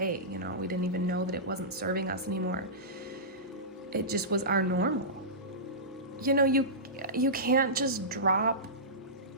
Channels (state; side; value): normal; both; correlation -0.18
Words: we didn't even know that it wasn't serving us anymore. It just was our normal. You can't just drop